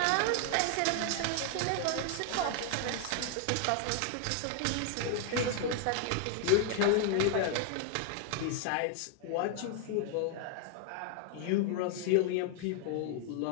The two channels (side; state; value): both; different; correlation 0.00